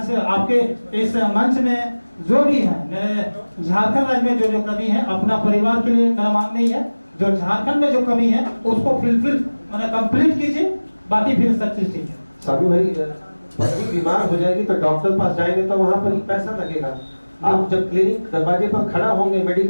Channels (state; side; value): inverted; both; correlation -1.00